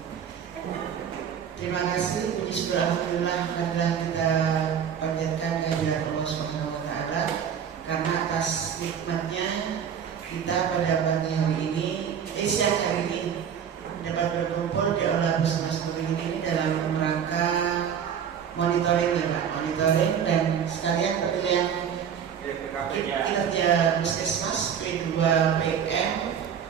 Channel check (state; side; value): quieter; left; 8.1 dB